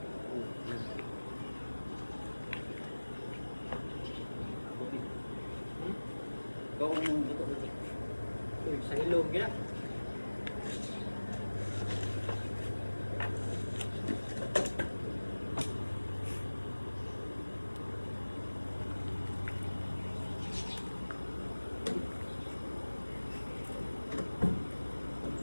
Uy, sa ilog ya.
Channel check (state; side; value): inverted; both; correlation -1.00